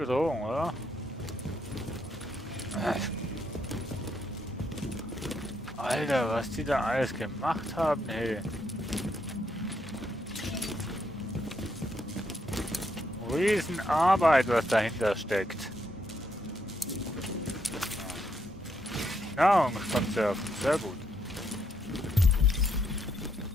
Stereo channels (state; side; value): normal; both; correlation 0.76